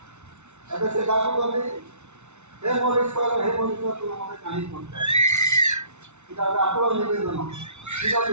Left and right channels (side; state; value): left; late; 0.82 ms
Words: ଏବେ ସେ ଡାକୁଛନ୍ତି, ହେ ମୋ ଈଶ୍ୱର, ହେ ମୋ ଈଶ୍ୱର, ତୁମେ ମୋତେ କାହିଁକି ପହଞ୍ଚାଅ? ଏଇଟା ଗୋଟେ ଆକୁଳ ନିବେଦନ। ଠିକ୍